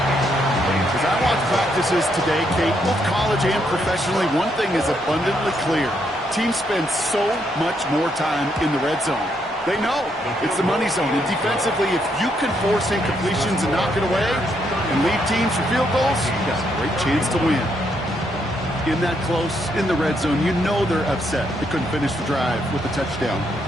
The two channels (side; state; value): both; normal; correlation 0.76